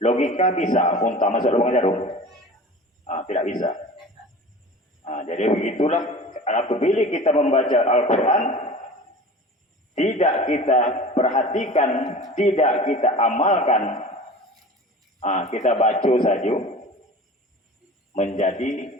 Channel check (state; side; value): normal; both; correlation 0.38